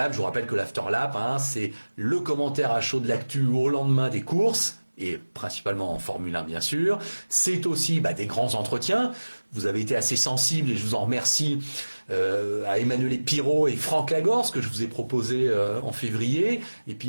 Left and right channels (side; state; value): both; inverted; correlation -1.00